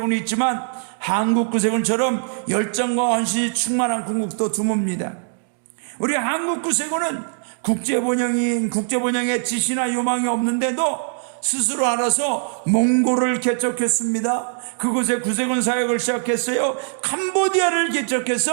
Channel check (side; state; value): left; silent; 65 dB below the other